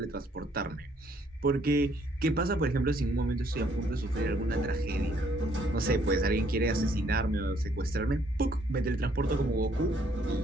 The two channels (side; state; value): both; normal; correlation 0.66